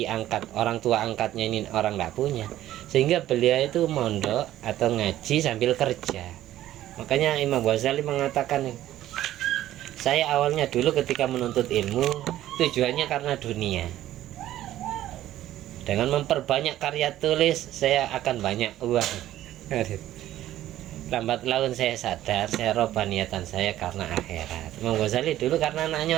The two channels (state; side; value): quieter; left; 13.5 dB